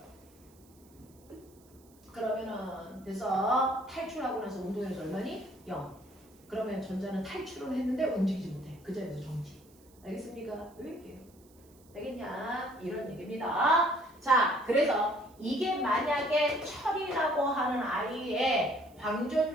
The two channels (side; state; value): right; noise; hiss, 29 dB below the sound